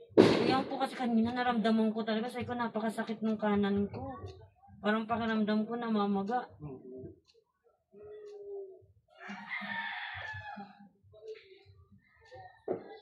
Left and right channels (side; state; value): both; identical; correlation 1.00